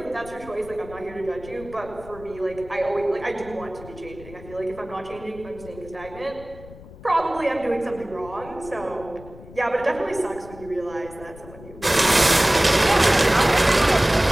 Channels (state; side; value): noise; left; rumble, 18 dB below the sound